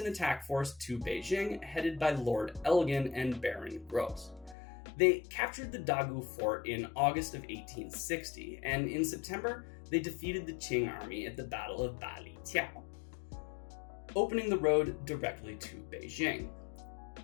attack force to Beijing headed by Lord Elgin and Baron Gros. They captured the Dagu fort in August of 1860, and in September, they defeated the Qing army at the Battle of Bali Tiao, opening the road directly to Beijing.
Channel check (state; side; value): drops out; right; at 4.5 s